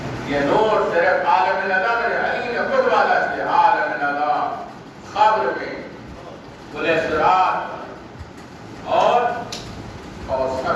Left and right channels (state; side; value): identical; both; correlation 1.00